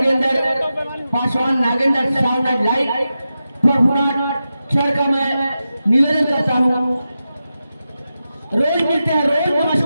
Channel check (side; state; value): both; inverted; correlation -0.91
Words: Paswan, Nagendra sound light Prabhunath sir का मैं निवेदन करता हूँ, रोज मिलते हैं, रोज